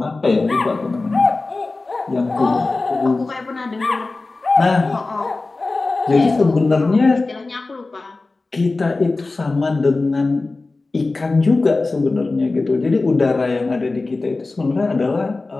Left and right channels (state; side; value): quieter; right; 3.4 dB